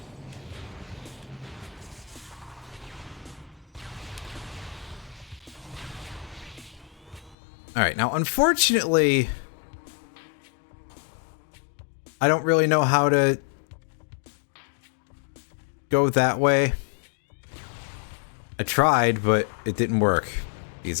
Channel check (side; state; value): right; drops out; at 7.4 s